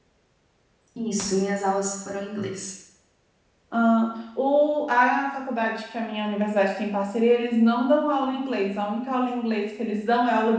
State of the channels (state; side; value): identical; both; correlation 1.00